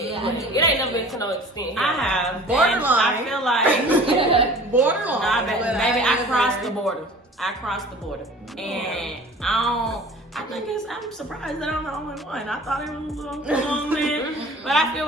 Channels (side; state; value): both; normal; correlation 0.44